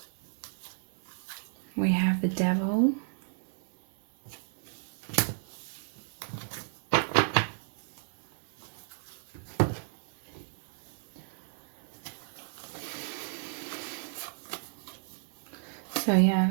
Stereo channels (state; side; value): silent; left; 56 dB below the other